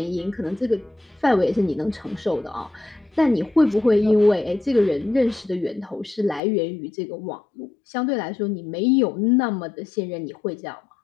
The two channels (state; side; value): drops out; right; at 6.4 s